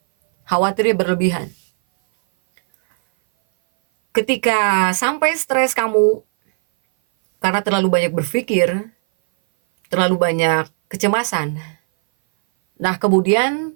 Khawatirnya berlebihan. Ketika sampai stres kamu karena terlalu banyak berpikir, terlalu banyak kecemasan. Nah,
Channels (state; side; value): silent; left; 59 dB below the other